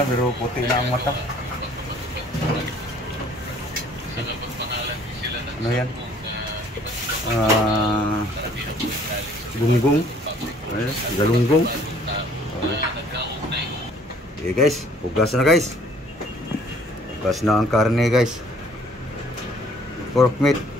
pero puti na ang mata. Ano yan? Gunggong. Galunggong. Okay guys, hugas na guys. Hugas na ang karne guys. Pork meat.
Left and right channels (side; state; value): both; normal; correlation 0.57